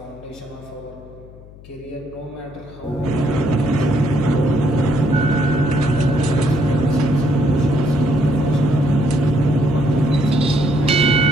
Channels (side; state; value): left; noise; hum, 20 dB below the sound